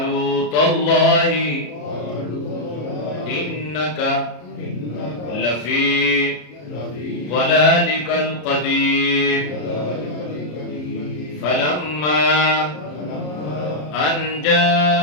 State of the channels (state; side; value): late; right; 34 ms